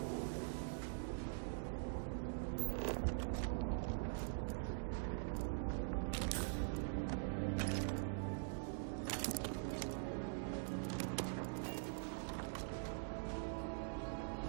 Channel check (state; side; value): silent; left; digital silence